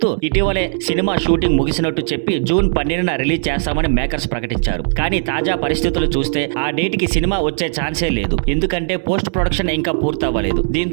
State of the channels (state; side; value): silent; left; 60 dB below the other